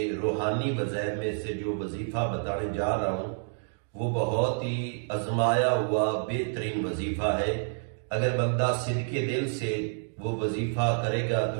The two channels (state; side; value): silent; left; digital silence